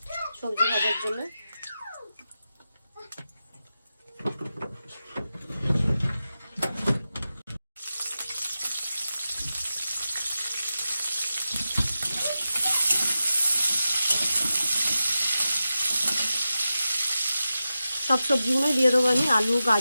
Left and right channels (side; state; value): both; inverted; correlation -0.93